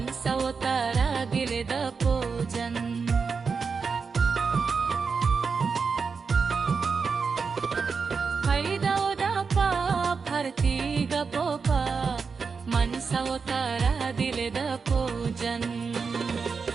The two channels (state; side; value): quieter; left; 5.2 dB